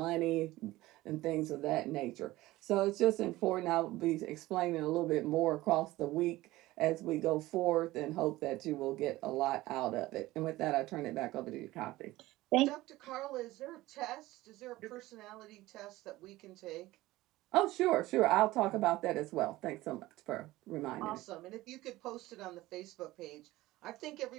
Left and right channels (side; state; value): left; quieter; 17.8 dB